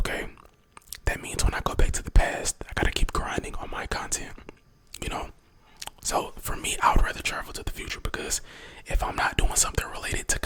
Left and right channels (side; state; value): both; identical; correlation 1.00